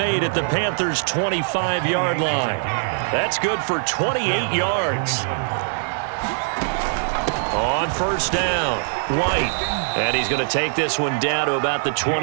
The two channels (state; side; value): silent; left; digital silence